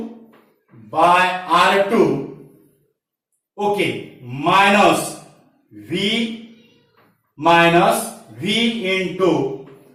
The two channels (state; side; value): identical; both; correlation 1.00